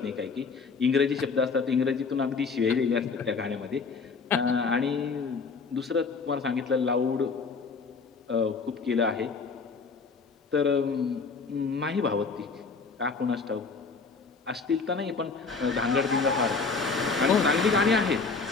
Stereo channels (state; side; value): quieter; right; 4.7 dB